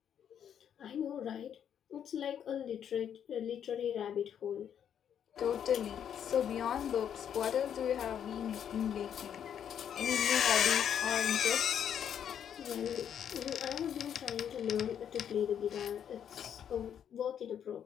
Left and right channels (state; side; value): quieter; right; 8.9 dB